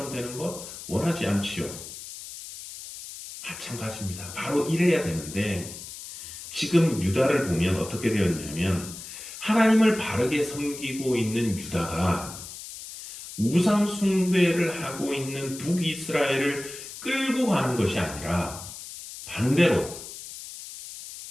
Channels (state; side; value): noise; left; hiss, 12 dB below the sound